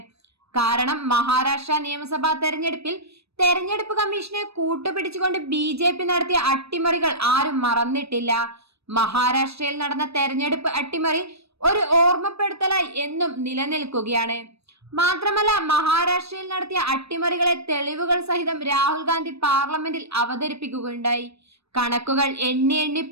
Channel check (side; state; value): left; late; 0.78 ms